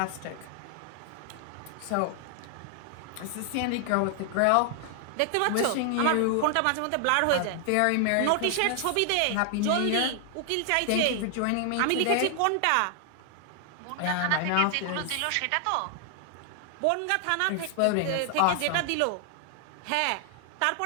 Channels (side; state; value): both; different; correlation 0.00